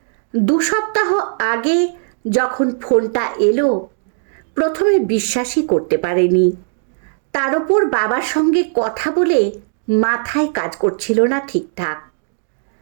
2 সপ্তাহ আগে যখন ফোনটা এলো, প্রথমে বিশ্বাসই করতে পারেনি। তার ওপর বাবার সঙ্গে কথা বলে মাথায় কাজ করছিল না ঠিকঠাক।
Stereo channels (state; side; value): silent; left; digital silence